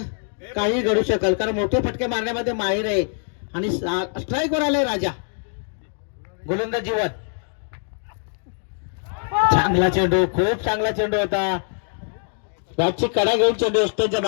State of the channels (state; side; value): silent; right; 56 dB below the other